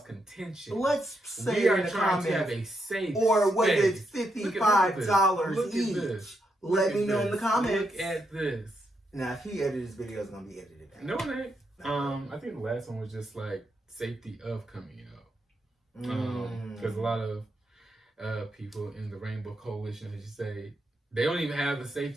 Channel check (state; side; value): normal; both; correlation 0.81